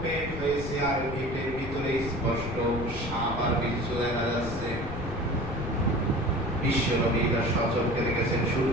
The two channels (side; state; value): left; noise; rumble, 8 dB below the sound